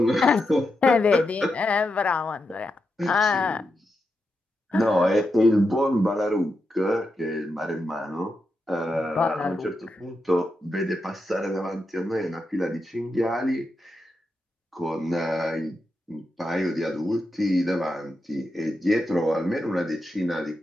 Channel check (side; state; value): both; normal; correlation 0.86